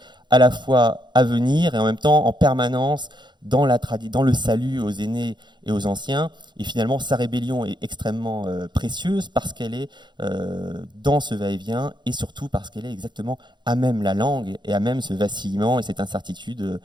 à la fois à venir et en même temps en permanence dans le salut aux aînés et aux anciens. Et finalement, sa rébellion est extrêmement précieuse parce qu'elle est dans ce va-et-vient et surtout parce qu'elle est exactement à même la langue et à même ce vacillement et cette incertitude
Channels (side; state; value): left; late; 0.22 ms